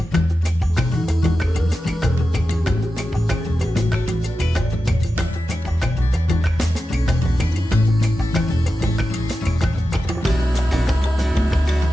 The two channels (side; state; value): both; normal; correlation 0.92